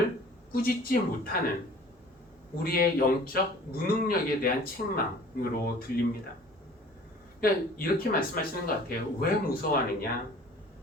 꾸짖지 못하는 우리의 영적 무능력에 대한 책망으로 들립니다. 그러니까 이렇게 말씀하시는 것 같아요. 왜 무서워하느냐?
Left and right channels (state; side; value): normal; both; correlation 0.48